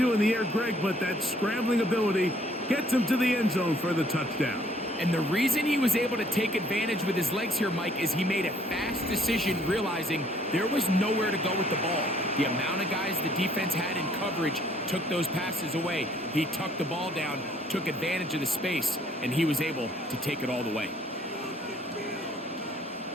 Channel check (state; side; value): normal; both; correlation 0.62